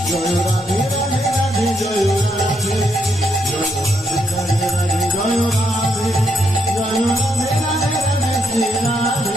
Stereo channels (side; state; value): both; normal; correlation 0.77